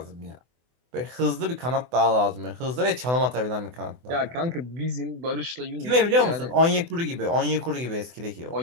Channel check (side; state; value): left; late; 24 ms